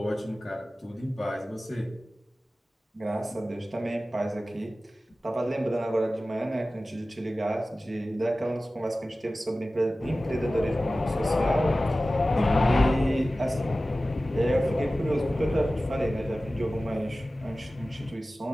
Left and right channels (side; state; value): both; normal; correlation 0.96